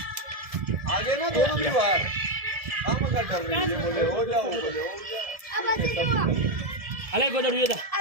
आगे ना दोनों भी बाहर काम कर रही है, बोले हो जाओ, बोले हो जाओ। अलग बदल ये था।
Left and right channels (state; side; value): late; left; 1.7 ms